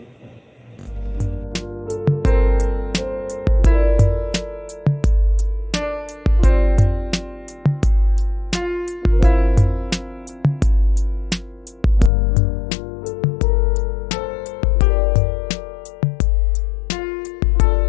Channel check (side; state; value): right; drops out; at 12.1 s